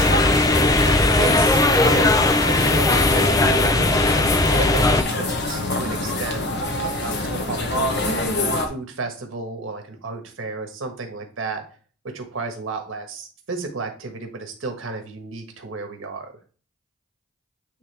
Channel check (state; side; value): normal; both; correlation 0.36